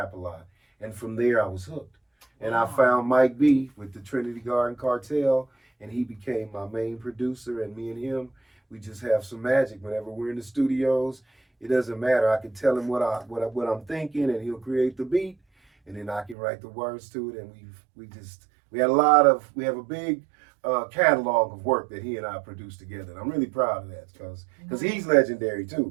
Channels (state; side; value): drops out; left; at 16.4 s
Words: A Lot. And from there I was hooked. And I found Mike B with the Trinity Garden Cartel, and he became my main producer, and me and him, we just have some magic. Whenever we're in the studios, it doesn't matter. I can tell him what I'm thinking, and he'll create the beat, and then I can write the words to it. And we have a big catalog of work that he and I produced together. And I'm really proud of that because he's legendary